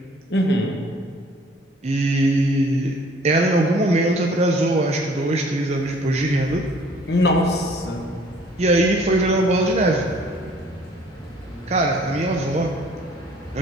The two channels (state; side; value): normal; both; correlation 0.56